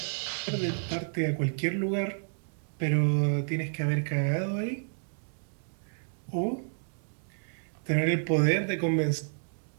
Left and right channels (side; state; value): left; silent; digital silence